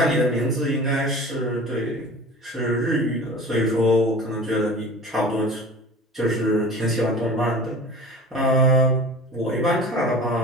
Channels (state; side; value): normal; both; correlation 0.39